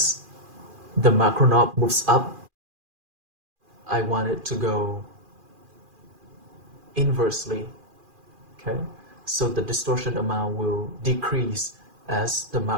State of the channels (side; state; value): left; late; 2.4 ms